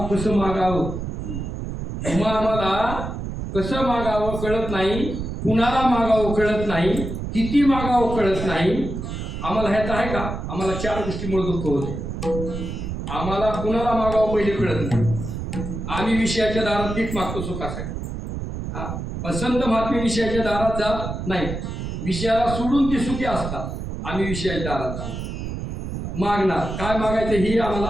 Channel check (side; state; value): right; noise; rumble, 6 dB below the sound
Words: कसं मागावं. तुम्हाला आम्हाला कसं मागावं कळत नाही. कुणाला मागावं कळत नाही. किती मागावं कळत नाही. आम्हाला ह्याचं आहे का? आम्हाला 4 गोष्टीमुळे दुःख होते. आम्हाला कुणाला मागावं पहिले कळत नाही. आम्ही विषयाच्या दारात पीक मागतो सुखासाठी. हा, पसंत महात्मे विषयाच्या दारात जात नाही. विषयाला सोडून ते सुखी असतात. आम्ही विषयाच्या दारात जातो. मागणार काय मागायचं हे